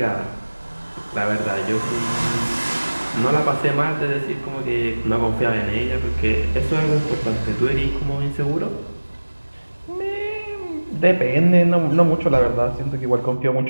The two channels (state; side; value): inverted; both; correlation -1.00